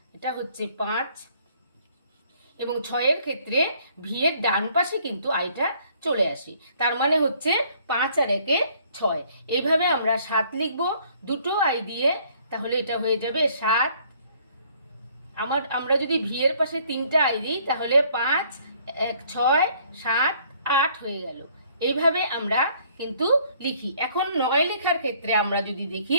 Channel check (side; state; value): both; inverted; correlation -0.61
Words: এটা হচ্ছে 5, এবং 6-এর ক্ষেত্রে ভি এর ডান পাশে কিন্তু আইটা চলে আসে। তার মানে হচ্ছে 5 আর 1 6। এইভাবে আমরা 7 লিখব দুটো আই দিয়ে, তাহলে এটা হয়ে যাবে 7। আমরা যদি ভি এর পাশে 3টা আই দিই, তাহলে 5 1 6 7 8 হয়ে গেল। এইভাবে আমরা কিন্তু লিখি। এখন 9 লেখার ক্ষেত্রে আমরা যদি দেখি,